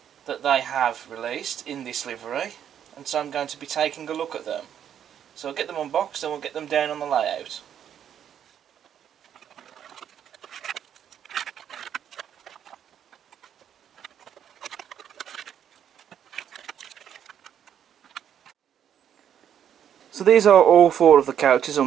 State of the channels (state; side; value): quieter; left; 9.4 dB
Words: that they have released in this livery, and so I'm going to be taking a look at them. So I'll get them unboxed and we'll get them down on the layout. So these are all 4 of the couches